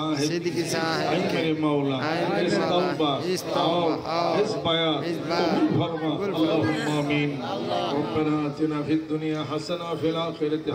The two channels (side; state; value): both; identical; correlation 1.00